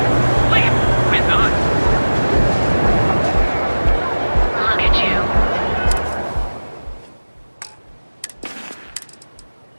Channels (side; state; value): both; inverted; correlation -1.00